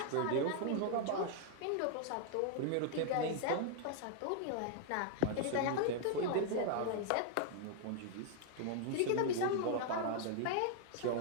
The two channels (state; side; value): different; both; correlation 0.00